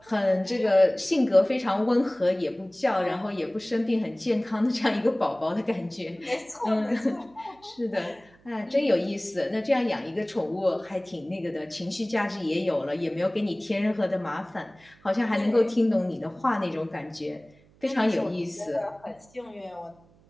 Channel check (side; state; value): right; noise; hum, 29 dB below the sound